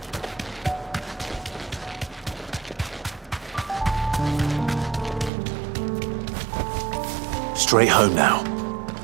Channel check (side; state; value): left; drops out; at 5.3 s